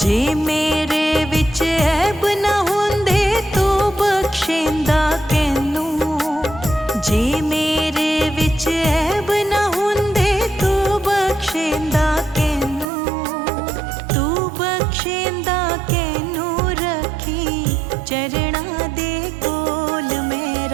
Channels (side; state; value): left; drops out; at 12.9 s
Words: जे मेरे विच ऐब न हुंदे तू बख्शेंदा कैनू, जे मेरे विच ऐब न हुंदे तू बख्शेंदा कैनू, तू बख्शेंदा कैनू रखी चरणा दे कोल